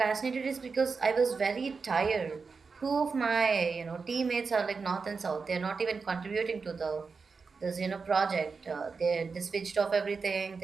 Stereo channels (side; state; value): left; quieter; 4.9 dB